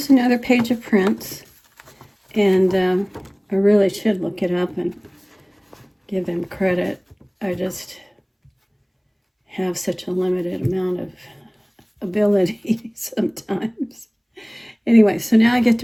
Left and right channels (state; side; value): identical; both; correlation 1.00